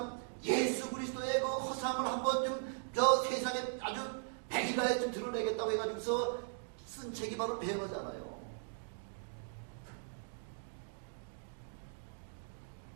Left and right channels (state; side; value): silent; left; digital silence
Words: 예수 그리스도의 그 허상을 한번 좀 저 세상에 아주 백일하에 좀 드러내겠다고 해가지고서 쓴 책이 바로 배너잖아요.